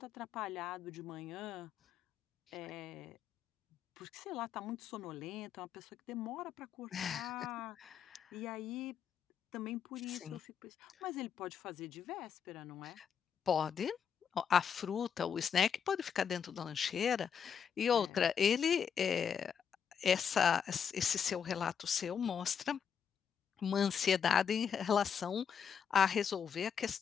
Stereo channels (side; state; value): right; quieter; 7.4 dB